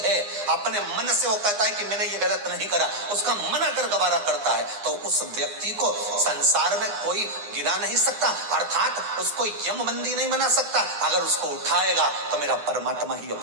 अपने मन से वो कहता है कि मैंने ये गलत नहीं करा, उसका मन अगर गवारा करता है, तो उस व्यक्ति को संसार में कोई गिरा नहीं सकता, अर्थात उसको यमबंदी नहीं बना सकता। अगर उसको उठाएगा तो मेरा परमात्मा ही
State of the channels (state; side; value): late; left; 9.8 ms